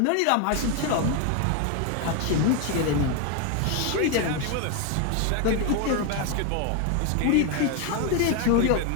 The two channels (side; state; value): both; different; correlation 0.01